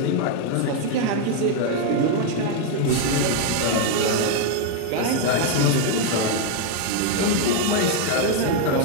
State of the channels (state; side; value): different; both; correlation 0.01